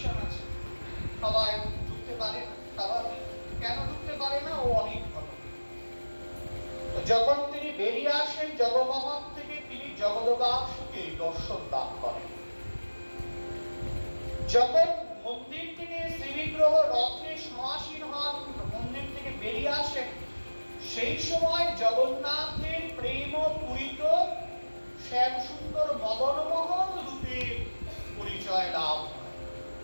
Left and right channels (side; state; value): both; inverted; correlation -1.00